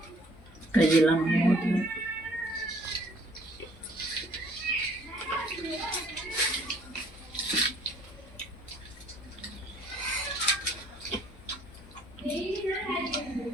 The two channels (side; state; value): both; normal; correlation 0.59